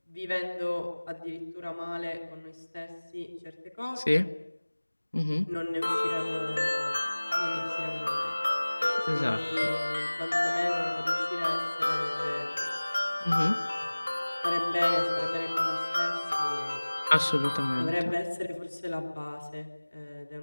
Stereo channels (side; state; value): both; inverted; correlation -1.00